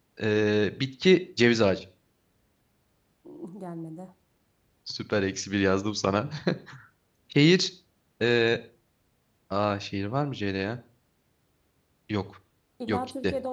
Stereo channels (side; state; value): both; identical; correlation 1.00